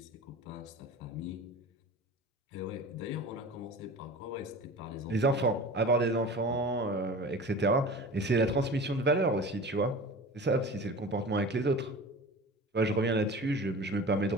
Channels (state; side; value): normal; both; correlation 0.37